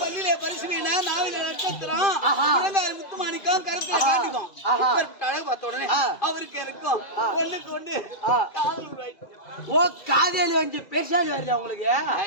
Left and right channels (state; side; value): late; right; 2.5 ms